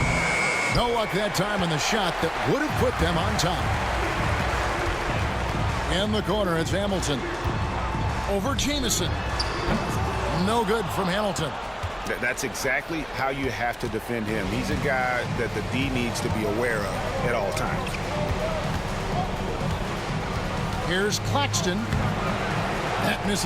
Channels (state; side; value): identical; both; correlation 1.00